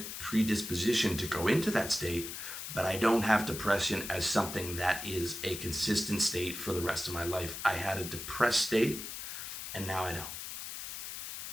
predisposition to go into that state, but I don't have depression as something that is a consistent state for the rest of my life. I had a depressed state, and now I don't.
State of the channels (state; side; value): noise; left; hiss, 8 dB below the sound